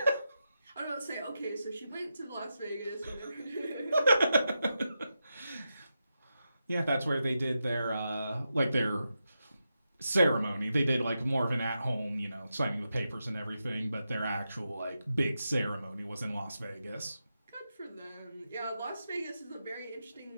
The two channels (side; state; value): both; inverted; correlation -0.88